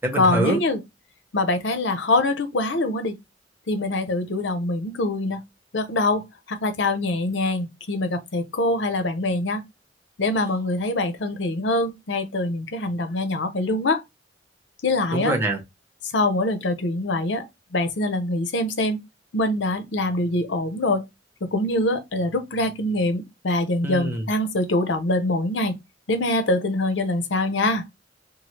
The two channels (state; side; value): normal; both; correlation 0.16